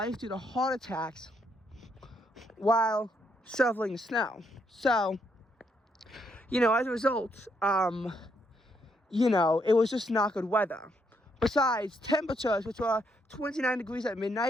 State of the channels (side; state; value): both; normal; correlation 0.75